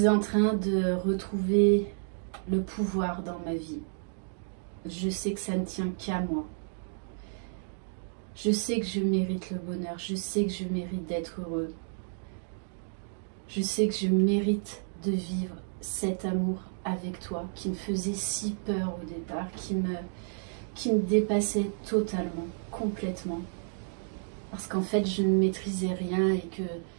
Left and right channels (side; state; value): left; silent; digital silence